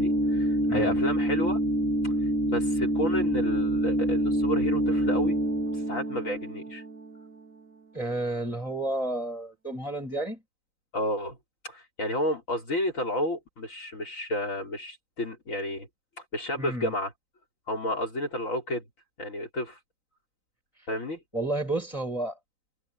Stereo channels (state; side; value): late; right; 3.9 ms